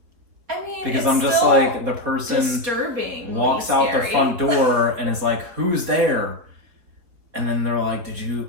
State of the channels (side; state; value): left; late; 4.4 ms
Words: I mean, Because it's I'm just still like, the person disturbing, walks out the front door and is like, who's there? And then they're like, did you